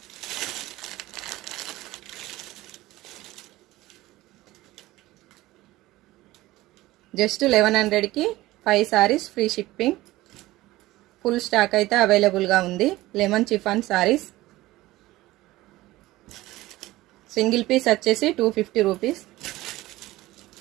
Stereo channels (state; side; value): quieter; left; 17.7 dB